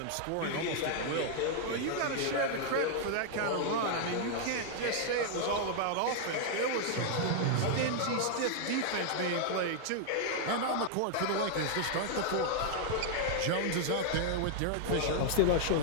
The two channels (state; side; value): different; both; correlation 0.00